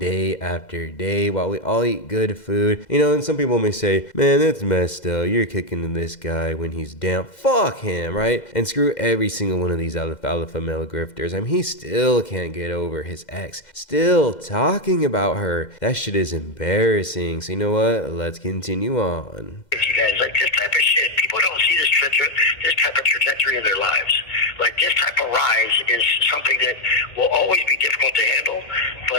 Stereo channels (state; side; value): late; right; 2.1 ms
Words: after day while we all eat good food. You know, and some people may say, man, that's messed up. You're kicking this guy when he's down. Fuck him, right? And screw every single one of these alpha male grifters. I mean, he still can't get over his ex. Still talking about her. That shit is embarrassing. So you know what? Let's continue on. You guys, like, this type of shit, people don't see this type of trajectory in their lives. Like, this type of rise is something that will always be difficult to handle,